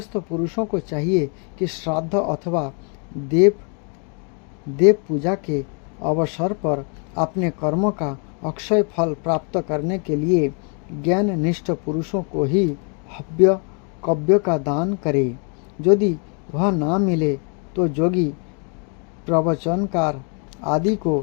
पुरुषों को चाहिए कि श्राद्ध अथवा देव पूजा के अवसर पर अपने कर्मों का अक्षय फल प्राप्त करने के लिए ज्ञान निष्ठ पुरुषों को ही हव्य कव्य का दान करे। यदि वह ना मिले तो जोगी, प्रवचनकार आदि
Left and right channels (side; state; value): right; quieter; 39.1 dB